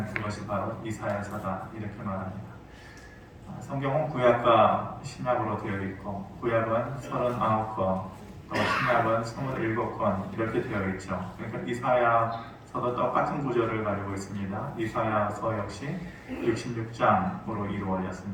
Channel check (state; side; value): identical; both; correlation 1.00